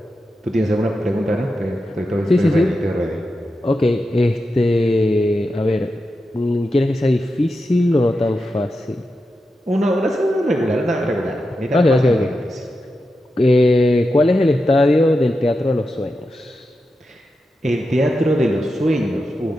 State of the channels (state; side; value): normal; both; correlation 0.89